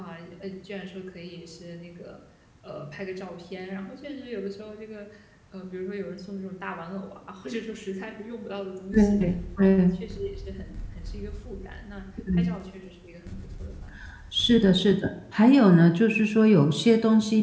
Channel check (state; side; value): identical; both; correlation 1.00